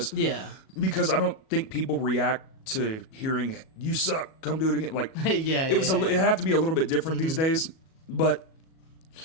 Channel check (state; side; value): late; right; 37 ms